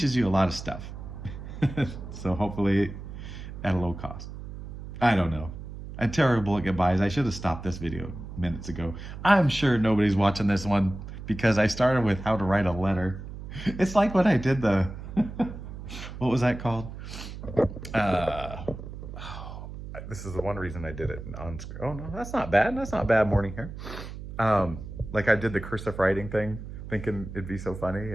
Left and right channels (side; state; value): right; noise; hum, 10 dB below the sound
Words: you a lot of stuff. So hopefully at a low cost. I don't know. I'm terrible at goodbyes. I should have stopped this video minutes ago. I'm sure nobody's watching this one because I started with how to write a letter. It's like when I did the, what was that called? This is the one reason I did it on screen. Oh no, that's not bad. That's not bad morning hair. Like I did the cursive writing thing, thinking it'd be so funny,